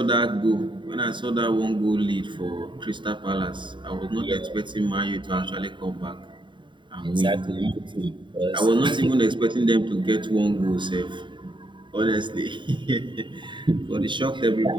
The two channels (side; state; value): left; late; 0.23 ms